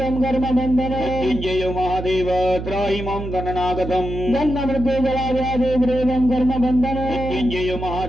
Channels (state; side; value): noise; right; hum, 7 dB below the sound